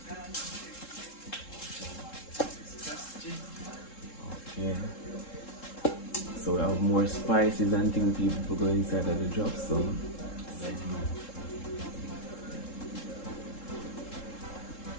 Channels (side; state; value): right; late; 3.7 ms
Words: Okay. So we have more spices and things people go inside of the drops, so